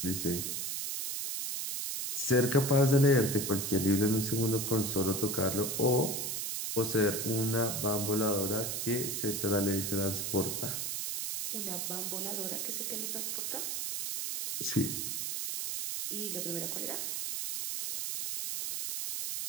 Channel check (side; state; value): right; noise; hiss, 2 dB below the sound